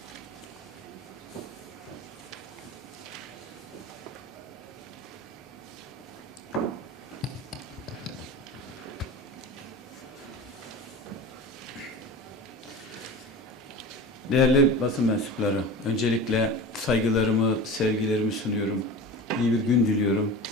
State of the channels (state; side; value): normal; both; correlation 0.32